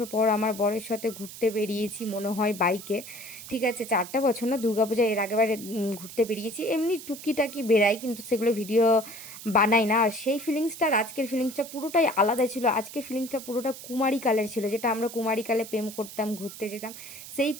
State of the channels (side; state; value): right; noise; hiss, 13 dB below the sound